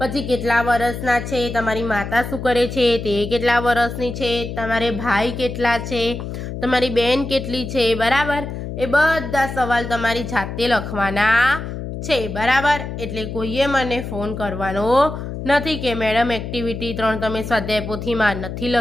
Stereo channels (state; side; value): noise; left; hum, 7 dB below the sound